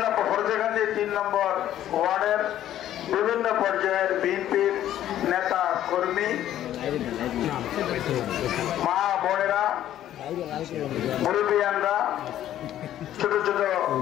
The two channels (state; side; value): quieter; right; 12.1 dB